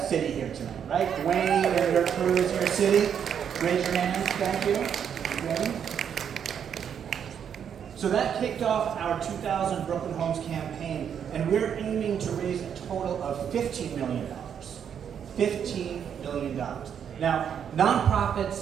city here tonight, right? Dwayne and your crew is here, city. Raise your hands, thank you. Dwayne. So that kicked off our 2000 Brooklyn Homes campaign, and we're aiming to raise a total of $15 million. $15 million. Now,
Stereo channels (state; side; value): quieter; left; 8.2 dB